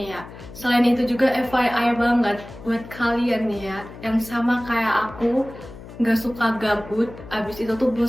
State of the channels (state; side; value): noise; left; hum, 16 dB below the sound